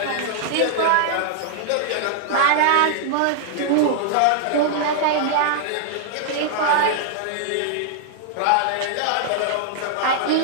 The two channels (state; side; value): different; both; correlation -0.01